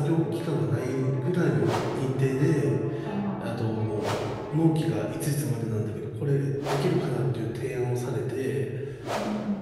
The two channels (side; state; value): both; identical; correlation 1.00